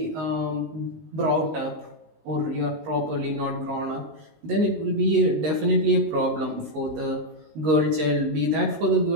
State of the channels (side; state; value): left; late; 19 ms